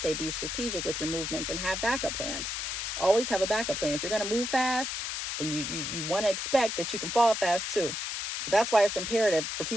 be strategic with your movements and have backup plans. Always have a backup plan. If you're going to move fast, then you want to expect that you can fall fast too. So that's why it's imperative for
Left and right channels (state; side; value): noise; left; hiss, 3 dB below the sound